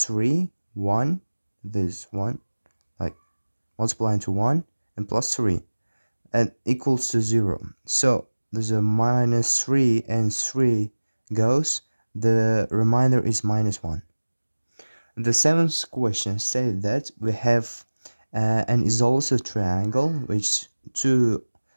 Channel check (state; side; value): inverted; both; correlation -1.00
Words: 3, 1, this 1, like multiplying to 1, and plus 3, and equals to 0. So there's a minus 3 and 3 goes, the remainder is minus 1. The seventh question said that we have an isosceles triangle which two